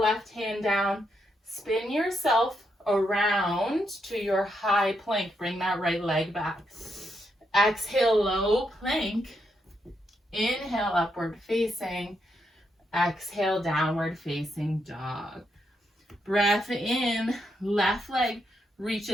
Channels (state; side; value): normal; both; correlation 0.80